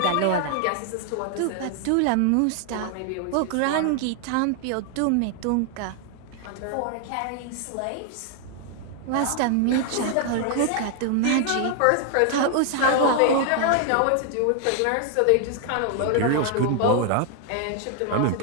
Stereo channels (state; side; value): different; both; correlation 0.00